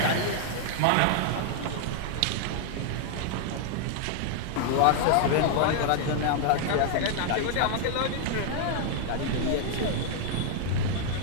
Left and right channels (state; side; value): different; both; correlation -0.01